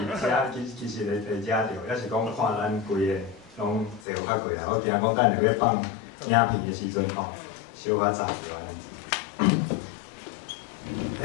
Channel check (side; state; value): right; drops out; at 4.0 s